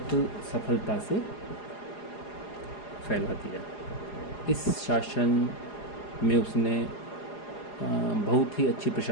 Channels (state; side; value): late; right; 4.8 ms